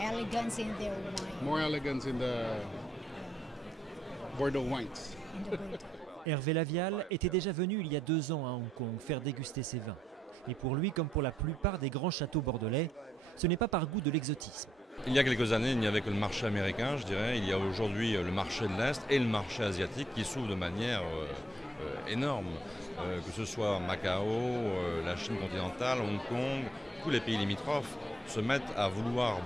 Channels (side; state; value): both; normal; correlation 0.73